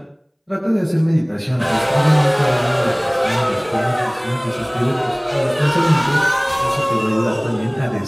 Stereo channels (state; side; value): identical; both; correlation 1.00